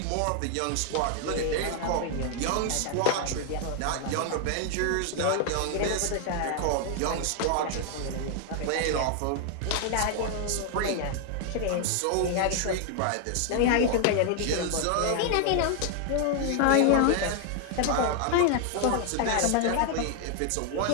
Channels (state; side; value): different; both; correlation 0.00